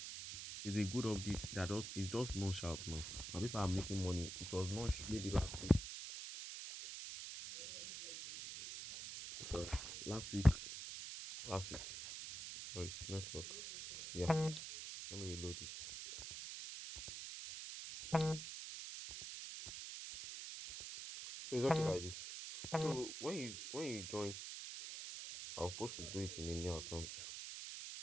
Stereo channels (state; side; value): noise; right; hiss, 7 dB below the sound